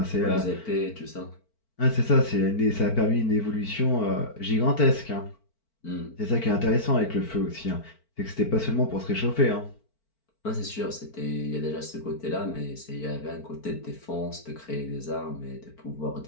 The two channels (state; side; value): late; right; 4.5 ms